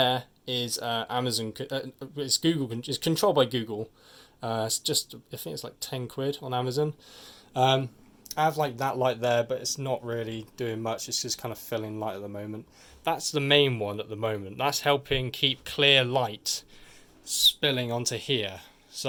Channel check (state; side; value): identical; both; correlation 1.00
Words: is Amazon. It's Google. It's controlled by Google. It's just, I think it's like 10 quid on Amazon. I have like that light there, but it's not really doing much. It's just kind of filling light at the moment. That's the main one at the moment. That's helping keep clear light spilling onto here.